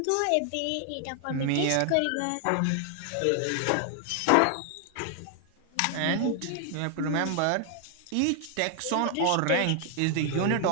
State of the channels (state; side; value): different; both; correlation 0.00